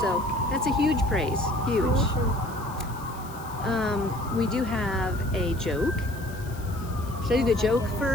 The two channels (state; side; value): noise; left; hiss, 20 dB below the sound